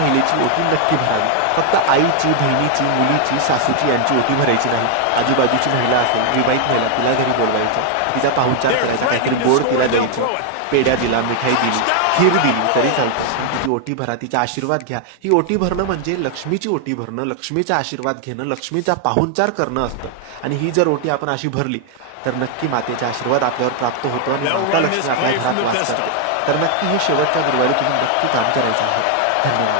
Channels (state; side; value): different; both; correlation 0.00